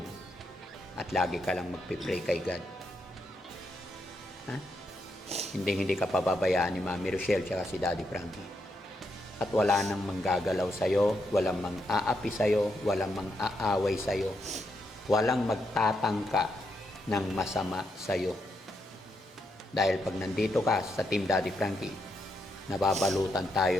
at lagi ka lang magpipray kay God. Ha? Hindi ka pababayaan ni Mami Rochelle tsaka si Daddy Frankie. At wala nang manggagalaw sa'yo, walang mang-aapi sa'yo, walang mang-aaway sa'yo, walang magtatangka ng masama sa'yo. Dahil pag nandito ka sa Team Daddy Frankie, nababalutan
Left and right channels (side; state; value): both; normal; correlation 0.81